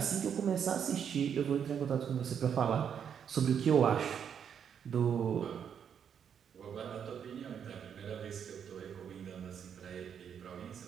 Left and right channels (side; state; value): left; quieter; 8.0 dB